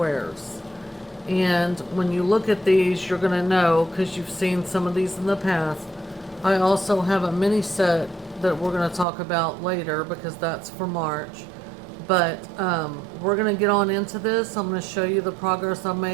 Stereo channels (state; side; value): drops out; left; at 9.1 s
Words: And when you look at these, you're going to know, because you've seen some of these in the past. I also have a mini set that we're going to talk about later because that's for March. But we're going to get on into this. I'm going to show you the progress I